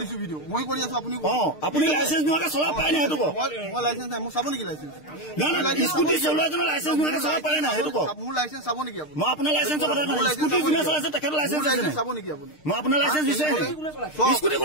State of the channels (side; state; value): right; late; 6.6 ms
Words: দিছো ভিডিঅ' মই কৰি আছো আপুনি আপুনি লাইচেঞ্চ নোহোৱাকে চলাব পাৰে নাই সেইটো কওক মই লাইচেঞ্চ নাই মোক চাব নেকি লাইচেঞ্চ স্কুটি চলোৱা এজনৰ লাইচেঞ্চ নোহোৱাকে চলাব পাৰে নাই সেইটো কওক মোৰ লাইচেঞ্চ চাব নেকি আপুনি মই আপোনাৰ লাইচেঞ্চৰ কথা কৈছো স্কুটি যোনে চলাইছে তেখেতৰ লাইচেঞ্চ আছে নাই চাব নেকি আপুনি মই আপোনাৰ লাইচেঞ্চ দিছে স্কুটি